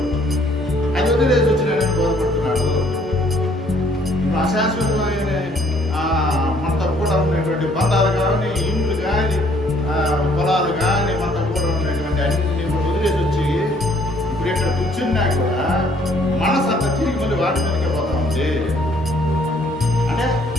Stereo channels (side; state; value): both; normal; correlation 0.63